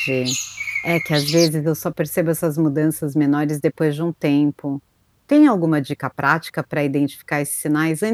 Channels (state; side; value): identical; both; correlation 1.00